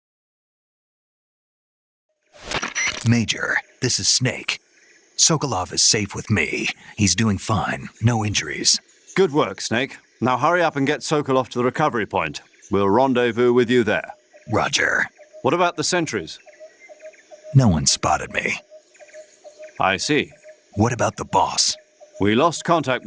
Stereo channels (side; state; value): both; identical; correlation 1.00